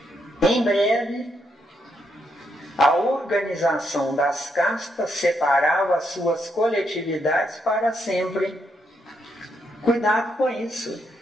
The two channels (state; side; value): normal; both; correlation 0.78